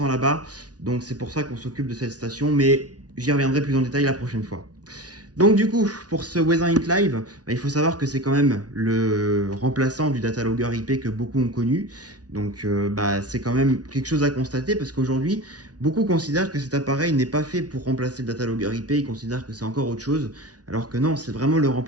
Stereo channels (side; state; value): left; late; 0.68 ms